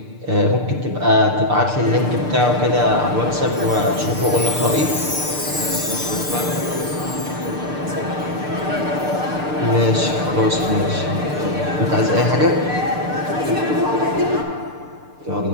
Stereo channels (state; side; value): late; left; 6.7 ms